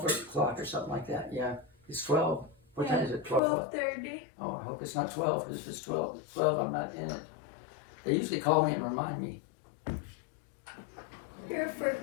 o'clock or something like that. Yeah, it's 12. What time is it? 12 what? 12:30. Oh, I hope it's not 12, because if it's 12, I'm not in it. They usually call me and remind me. You're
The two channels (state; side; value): drops out; right; at 3.4 s